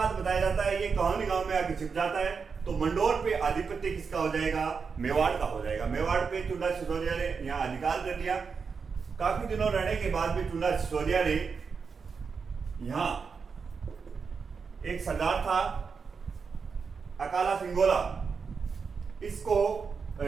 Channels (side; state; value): left; quieter; 5.5 dB